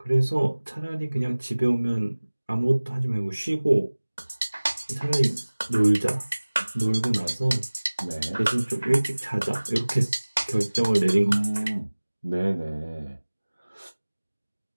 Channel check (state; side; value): inverted; both; correlation -1.00